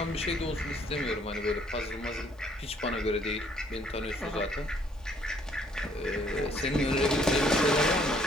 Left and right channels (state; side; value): normal; both; correlation 0.64